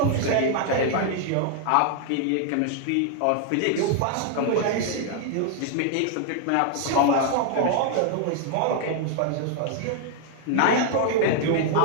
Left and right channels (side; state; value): both; different; correlation 0.00